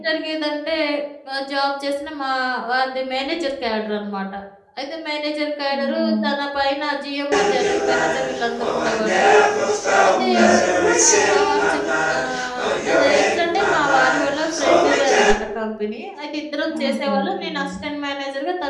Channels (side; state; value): both; identical; correlation 1.00